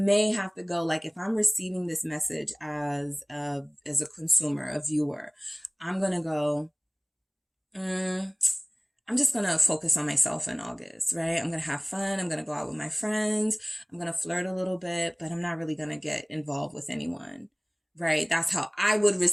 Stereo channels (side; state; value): both; identical; correlation 1.00